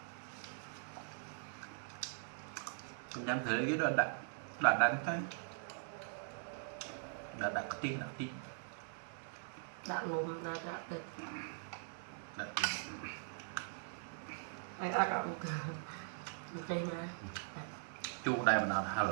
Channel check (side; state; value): left; silent; 50 dB below the other